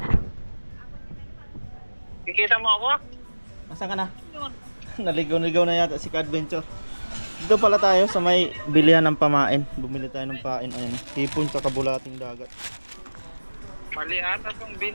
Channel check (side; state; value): both; inverted; correlation -1.00